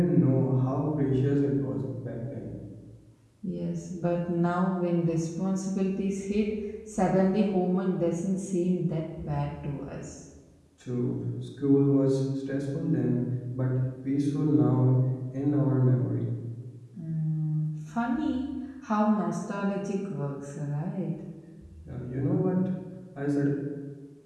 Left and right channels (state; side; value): identical; both; correlation 1.00